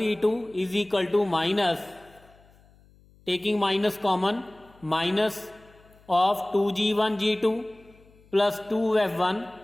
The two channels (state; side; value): noise; left; hum, 28 dB below the sound